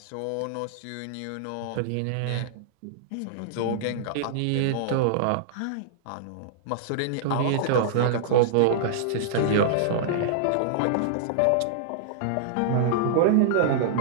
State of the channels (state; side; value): different; both; correlation -0.02